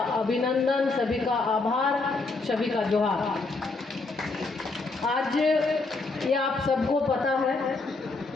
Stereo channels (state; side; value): quieter; right; 3.6 dB